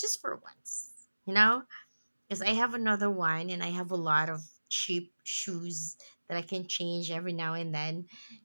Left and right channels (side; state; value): both; inverted; correlation -1.00